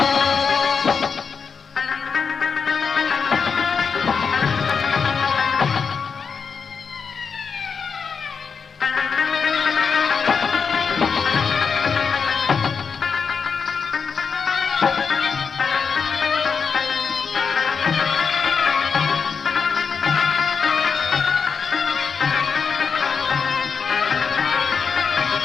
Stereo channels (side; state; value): right; quieter; 5.8 dB